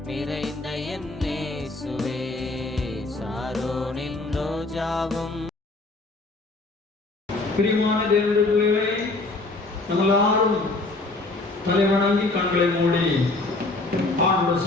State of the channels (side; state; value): right; quieter; 3.1 dB